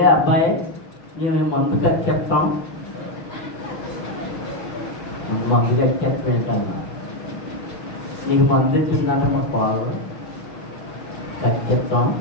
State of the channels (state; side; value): late; right; 5.8 ms